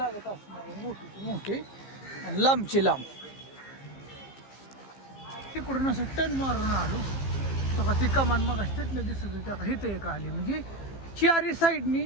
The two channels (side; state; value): right; late; 15 ms